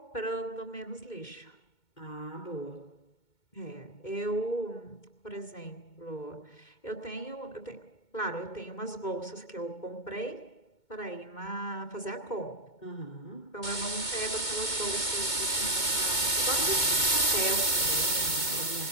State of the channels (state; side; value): late; right; 2.2 ms